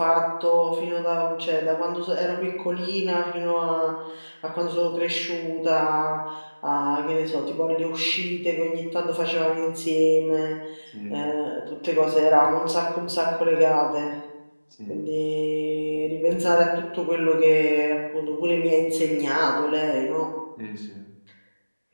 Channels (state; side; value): inverted; both; correlation -1.00